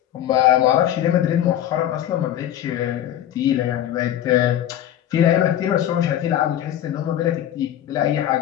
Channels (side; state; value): right; quieter; 11.5 dB